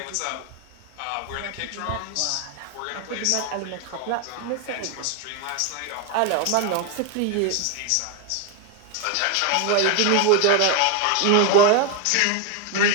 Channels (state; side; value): different; both; correlation 0.01